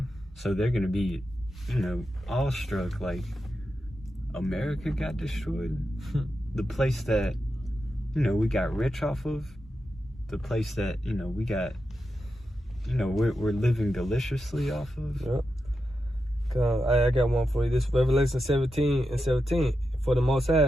So they're going to be, you know, awestruck, like, America got destroyed? The place that, you know, we got rich off of, the place that, you know, we got, you know, we're living deliciously off of. Yep. I got one for you. This Revelation 17:17. "For the Most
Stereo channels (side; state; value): both; normal; correlation 0.88